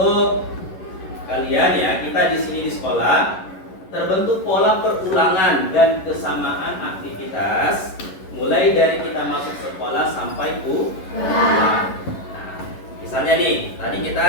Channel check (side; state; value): right; late; 11 ms